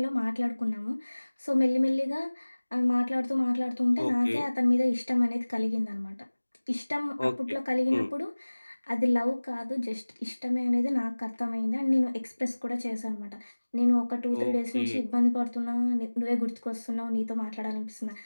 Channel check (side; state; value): both; inverted; correlation -1.00